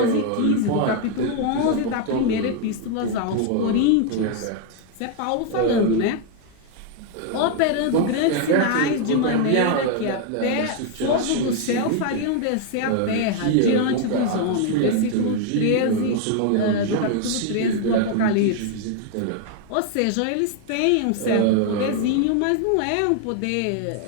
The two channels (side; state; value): both; different; correlation 0.00